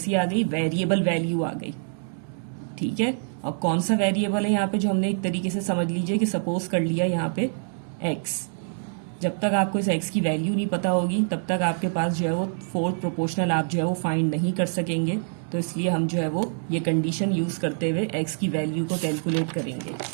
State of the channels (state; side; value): silent; left; digital silence